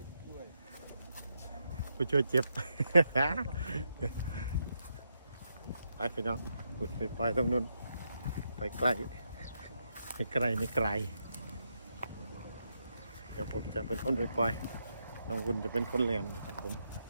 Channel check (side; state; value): both; inverted; correlation -0.82